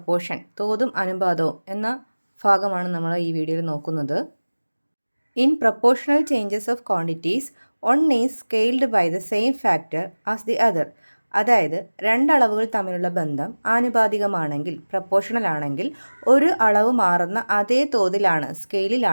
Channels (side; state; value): both; inverted; correlation -1.00